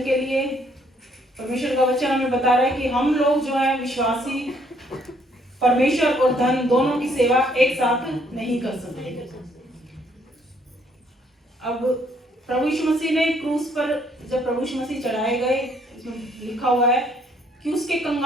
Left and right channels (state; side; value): normal; both; correlation 0.67